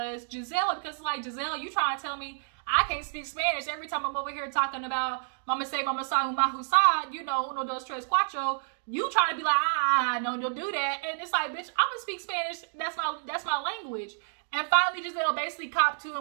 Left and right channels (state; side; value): silent; left; digital silence